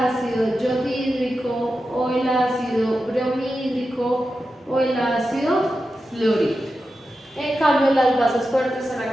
yodhídrico o el ácido bromídrico o el ácido fluorhídrico. En cambio, las bases fuertes son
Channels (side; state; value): both; normal; correlation 0.91